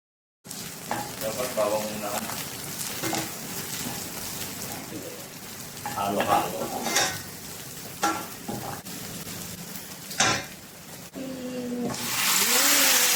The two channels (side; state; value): both; identical; correlation 1.00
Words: Dapat bawang muna ka. Halo-halo.